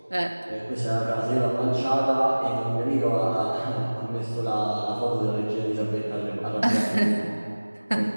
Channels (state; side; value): inverted; both; correlation -1.00